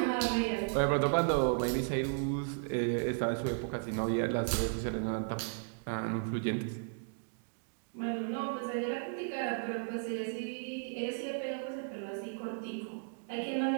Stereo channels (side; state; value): left; silent; digital silence